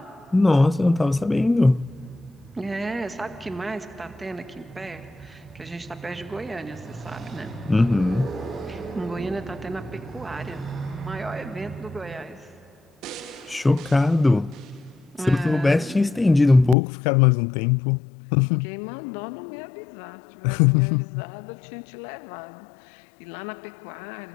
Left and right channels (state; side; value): drops out; right; at 16.8 s